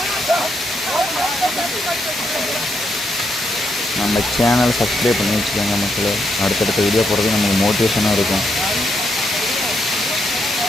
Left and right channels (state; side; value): normal; both; correlation 0.79